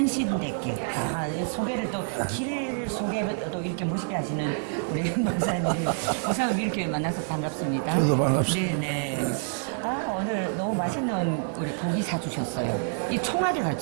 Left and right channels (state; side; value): silent; left; 60 dB below the other